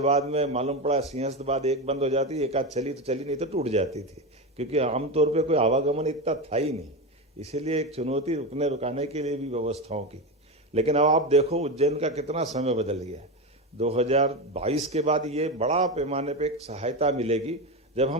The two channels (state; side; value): normal; both; correlation 0.17